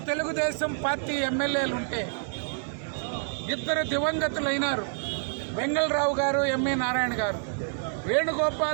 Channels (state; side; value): silent; left; 60 dB below the other